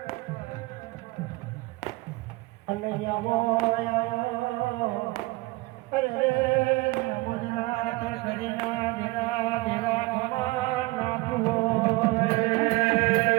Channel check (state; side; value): quieter; left; 22.6 dB